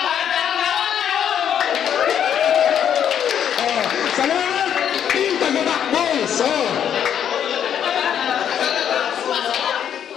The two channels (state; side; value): quieter; right; 9.1 dB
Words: Salamat! Team Tagabakbos!